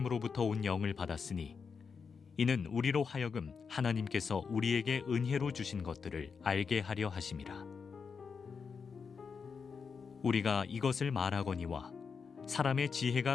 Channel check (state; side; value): quieter; right; 5.7 dB